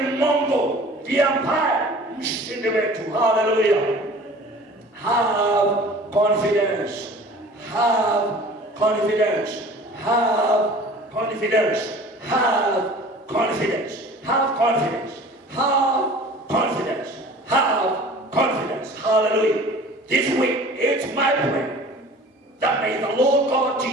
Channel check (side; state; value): both; normal; correlation 0.45